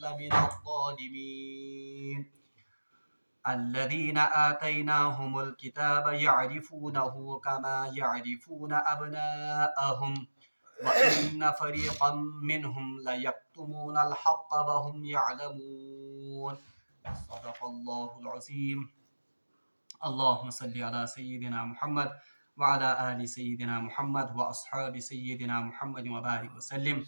لَمِنَ الظَّالِمِينَ الَّذِينَ آتَيْنَاهُمُ الْكِتَابَ يَعْرِفُونَهُ كَمَا يَعْرِفُونَ أَبْنَاءَهُمْ وَإِنَّ فَرِيقًا مِّنْهُمْ لَيَكْتُمُونَ الْحَقَّ وَهُمْ يَعْلَمُونَ صدق الله العظيم۔ اللهم صل على سيدنا محمد وعلى آل سيدنا محمد وأصحاب سيدنا محمد وبارك وسلم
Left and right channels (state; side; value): inverted; both; correlation -1.00